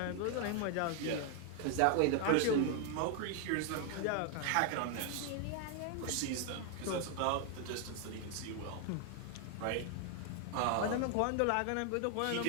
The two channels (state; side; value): different; both; correlation 0.00